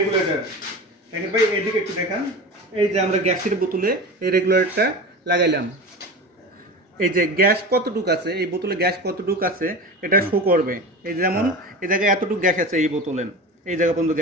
দেখেন ভাই, এইদিকে একটু দেখান। এই যে আমরা গ্যাসের বোতলে এই রেগুলেটরটা লাগাইলাম। এই যে গ্যাস কতটুকু আছে, এই বোতলে গ্যাস কতটুকু আছে এটা শো করবে। এই যেমন এই জায়গায় এতটুকু গ্যাস আছে, এই বোতলে এই জায়গা পর্যন্ত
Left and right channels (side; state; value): both; normal; correlation 0.30